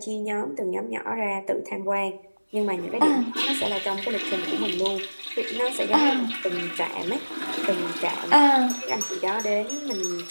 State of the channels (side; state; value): both; inverted; correlation -1.00